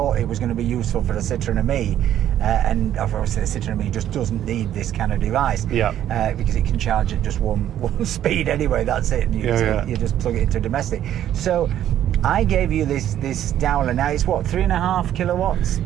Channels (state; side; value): quieter; left; 11.3 dB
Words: it was going to be useful for the Citroen Me, and obviously the Citroen Me just doesn't need this kind of device, because it can charge at just one speed anyway. That's it. And you just plug it into domestic. So I gave you this Dowler. Now it's what, 3.5 kilowatts?